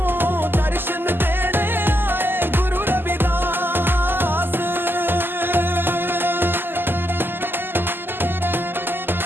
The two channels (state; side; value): late; left; 0.097 ms